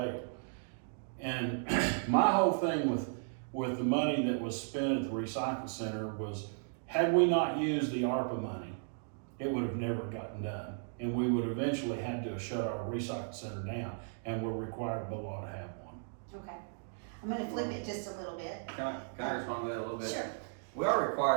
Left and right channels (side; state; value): left; silent; digital silence